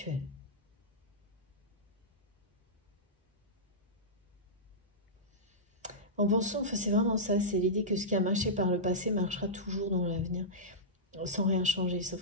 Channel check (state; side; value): normal; both; correlation -0.14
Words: En pensant, enfin, c'est vraiment ça, c'est l'idée que ce qui a marché par le passé marchera toujours dans l'avenir, sans rien changer,